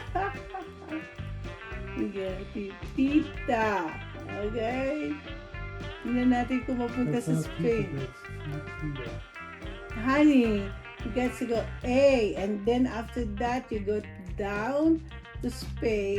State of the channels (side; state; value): both; identical; correlation 1.00